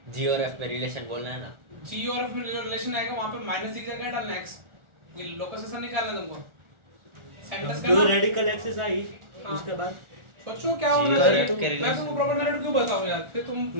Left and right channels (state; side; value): late; left; 1.4 ms